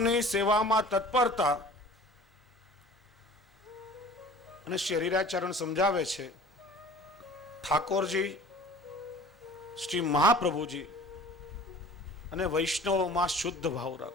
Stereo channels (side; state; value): both; normal; correlation 0.44